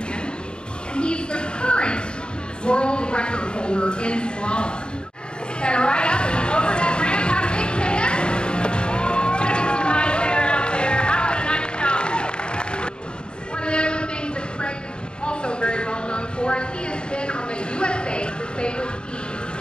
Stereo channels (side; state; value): right; late; 0.050 ms